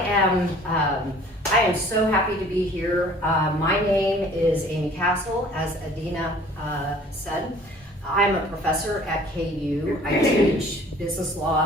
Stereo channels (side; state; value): both; normal; correlation 0.52